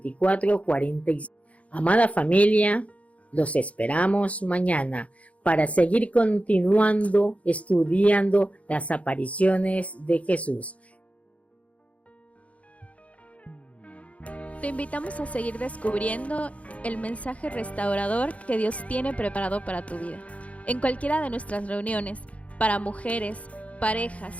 46. Amada familia, los esperamos mañana para seguir continuando estudiando las apariciones de Jesús. Te invitamos a seguir descubriendo el mensaje restaurador que Dios tiene preparado para tu vida. En cualquiera de nuestras reuniones, para mujeres,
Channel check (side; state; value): right; late; 0.065 ms